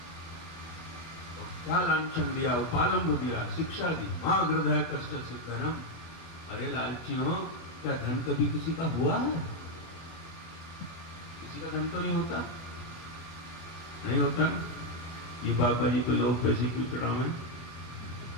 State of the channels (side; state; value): right; late; 24 ms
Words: क्या लांछन दिया, उपालंब दिया, शिक्षा दी, मां हृदय कष्ट से धनम। अरे लालचियों, क्या धन कभी किसी का हुआ है? किसी का धन तो नहीं होता, नहीं होता। ये बाबा जी पे लोग पैसे क्यों चढ़ावे?